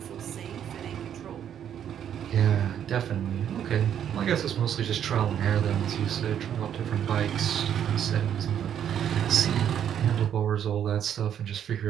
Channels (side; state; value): left; quieter; 9.4 dB